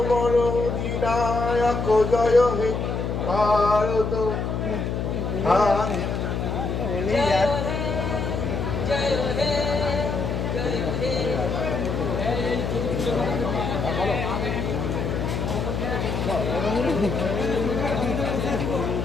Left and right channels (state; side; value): noise; left; hum, 2 dB below the sound